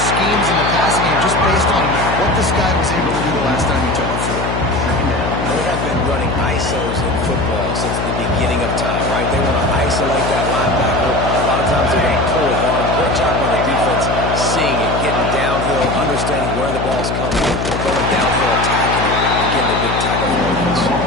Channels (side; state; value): left; noise; hum, 3 dB below the sound